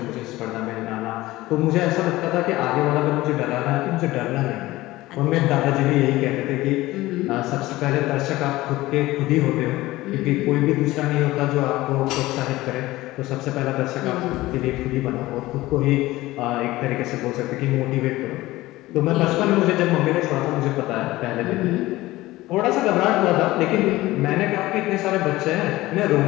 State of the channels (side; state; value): right; quieter; 18.0 dB